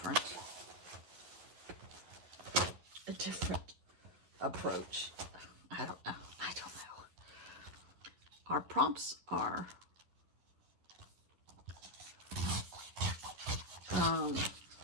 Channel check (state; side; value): late; left; 11 ms